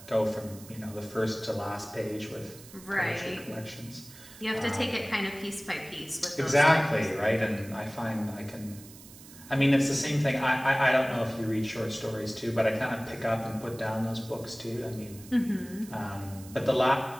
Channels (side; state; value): right; noise; hiss, 19 dB below the sound